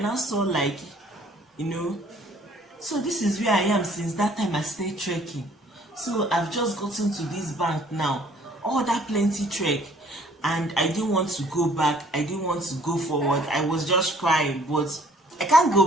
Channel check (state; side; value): normal; both; correlation 0.58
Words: I saw, like, so this is where I am since that time I started trekking. So I've just gotten to this bank now, all that plenty trek, and I didn't want to go back, I didn't want to go forward. I was just crying, but I can't